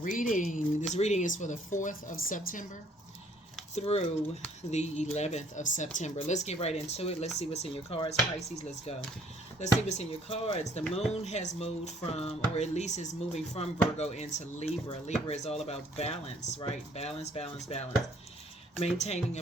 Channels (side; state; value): both; normal; correlation 0.61